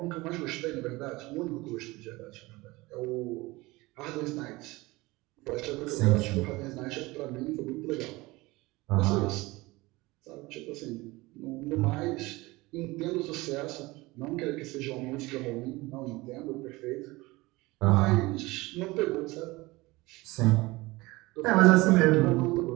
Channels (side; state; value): left; quieter; 21.5 dB